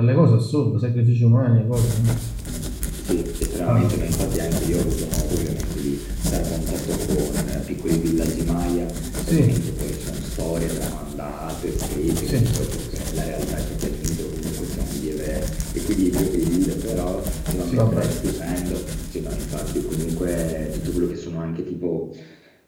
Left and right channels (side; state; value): both; identical; correlation 1.00